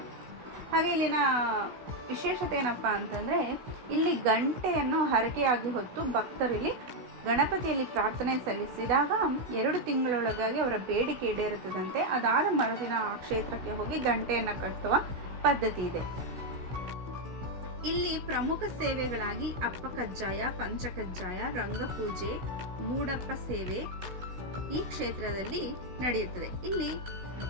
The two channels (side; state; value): left; late; 16 ms